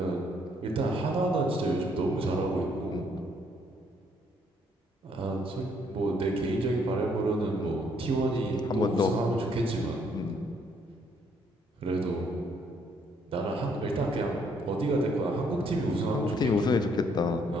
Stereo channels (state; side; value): normal; both; correlation 0.68